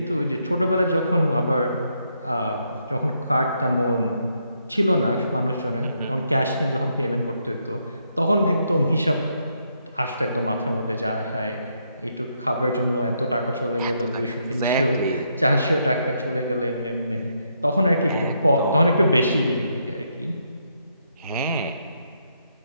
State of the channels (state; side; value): inverted; both; correlation -0.76